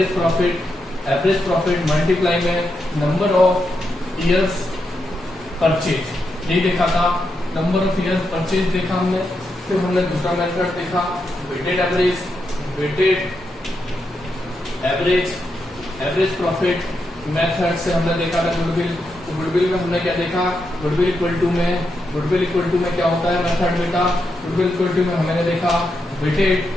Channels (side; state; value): both; normal; correlation 0.84